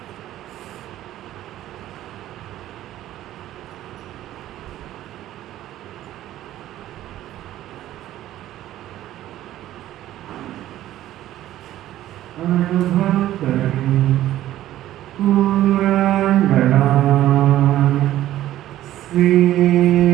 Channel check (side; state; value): left; quieter; 13.6 dB